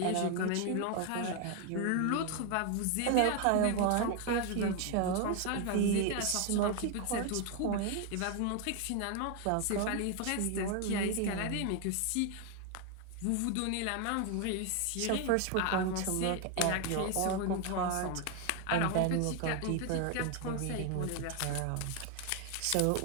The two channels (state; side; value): different; both; correlation 0.01